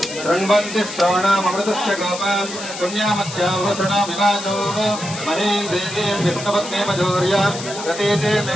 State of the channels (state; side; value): noise; left; hiss, 10 dB below the sound